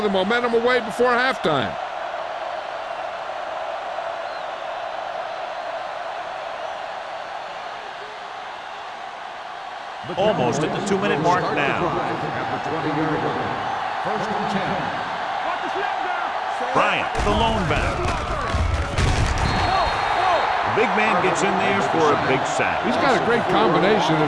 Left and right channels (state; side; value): identical; both; correlation 1.00